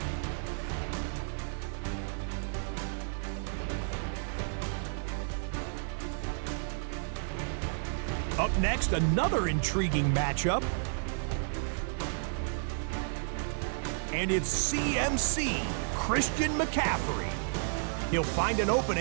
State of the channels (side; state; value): left; silent; digital silence